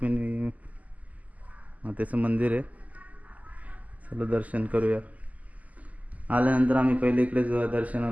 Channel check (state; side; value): late; left; 0.075 ms